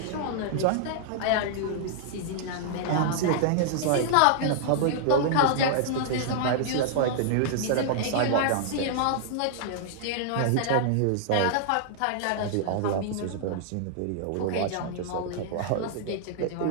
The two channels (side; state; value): both; different; correlation -0.01